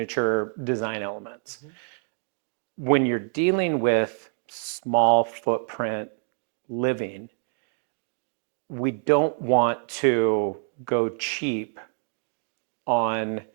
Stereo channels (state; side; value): silent; left; 56 dB below the other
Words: design elements. Mm-hmm. When you're dealing with small footprint living, we don't want to go cheap on